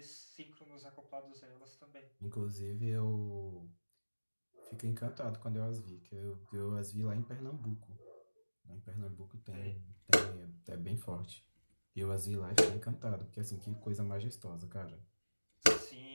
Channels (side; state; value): both; inverted; correlation -1.00